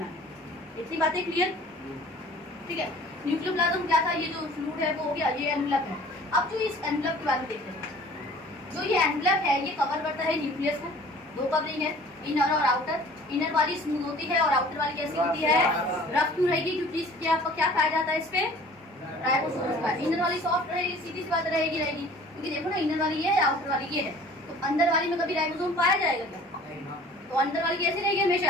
है। इतनी बातें क्लियर? ठीक है। न्यूक्लियोप्लाज्म क्या था? ये जो फ्लूइड है वो हो गया, ये एनवलप है। अब जो इस एनवलप के बारे में देखते हैं, जो ये एनवलप है ये कवर करता है न्यूक्लियस को। दो कवरिंग है, इनर और आउटर। इनर वाली स्मूथ होती है और आउटर वाली कैसी होती है? रफ क्यों रहेगी? क्योंकि इसके आपको क्या पाया जाता है? इस पे राइबोसोम का। इनर वाली सॉफ्ट रहेगी, सीधी सी बात रहेगी, क्योंकि देखो ना, इनर वाली ये है, आउटर वाली ये है। तो अंदर वाली में कभी राइबोसोम पाया जाएगा क्या? तो अंदर वाली कैसी रहेगी?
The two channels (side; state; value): both; normal; correlation 0.48